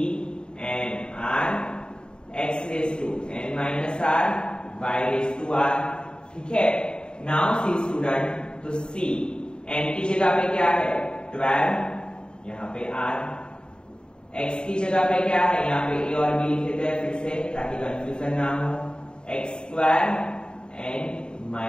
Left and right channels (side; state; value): right; late; 0.050 ms